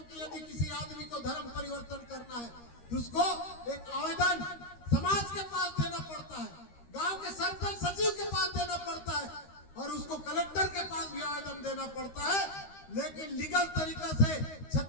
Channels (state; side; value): late; right; 13 ms